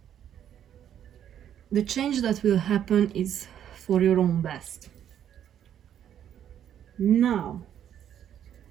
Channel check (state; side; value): quieter; left; 9.9 dB